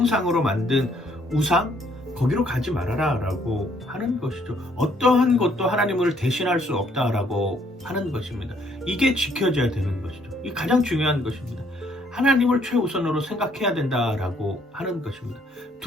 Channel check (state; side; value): normal; both; correlation 0.66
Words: 만든 우상, 거기로 가지 말아라 라고 하는 것이죠. 어떠한 것도 하나님을 대신할 수 없다라고 하는 것입니다. 이게 지켜져야 되는 것이죠. 이게 가장 중요한 것입니다. 하나님을 최우선으로 생각해야 된다라고 하는 것입니다.